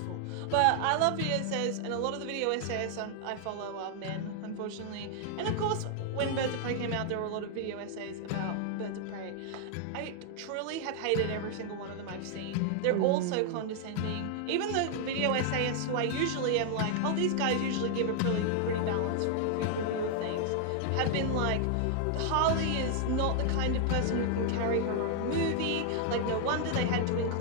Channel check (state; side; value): different; both; correlation 0.00